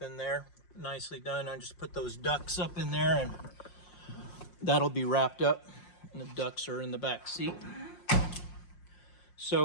in there. Nicely done. I just put those ducts up in there, and that'll be wrapped up. And the ducts are in the back seat.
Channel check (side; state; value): right; late; 5.6 ms